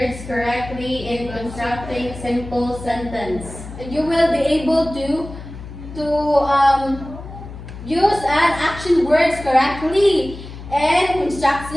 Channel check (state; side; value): noise; left; hum, 13 dB below the sound